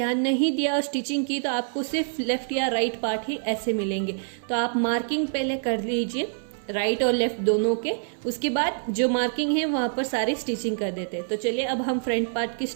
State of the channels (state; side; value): silent; left; 61 dB below the other